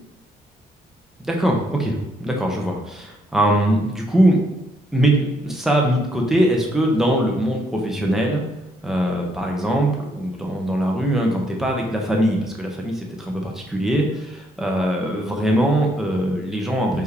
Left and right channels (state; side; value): normal; both; correlation 0.73